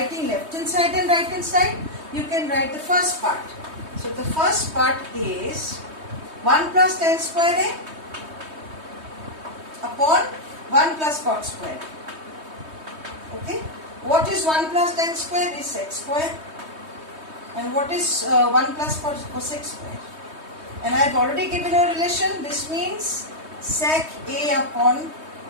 left hand side and right hand side, you can write the first part. So the first part is 1 plus tan square A upon 1 plus cot square. Okay. What is 1 plus tan square? Is sec square. And what is 1 plus cosec square? And I have already given a relation. This means sec A upon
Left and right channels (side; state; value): left; late; 3.2 ms